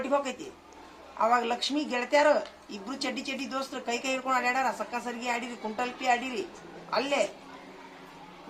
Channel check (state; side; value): identical; both; correlation 1.00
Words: ಹೋಗೈತಿ. ಅವಾಗ ಲಕ್ಷ್ಮಿ ಗೆಳತ್ಯಾರು ಇಬ್ರು ಚಡ್ಡಿ ದೋಸ್ತರು ಕೈ ಹಿಡ್ಕೊಂಡು ಆಡ್ಯಾರ. ಸಕ್ಕ ಸರಿಗೆ ಆಡಿರಿ, ಕುಂಟಲ್ಪಿ ಆಡಿರಿ. ಅಲ್ಲೇ